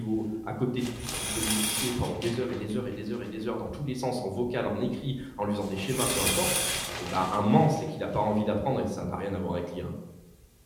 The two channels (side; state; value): both; identical; correlation 1.00